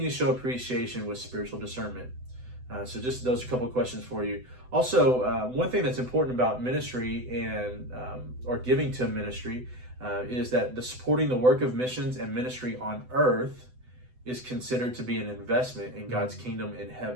show appreciation with spiritual discernment? So just those are a couple of questions for you. Also, one thing that's important about ministry and or giving to ministry is that the supporting the work of missions and ministry on earth is considered to be an investment in God's kingdom in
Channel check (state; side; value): late; left; 7.9 ms